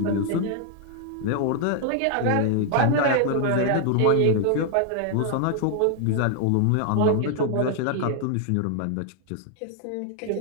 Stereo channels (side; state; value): both; different; correlation 0.00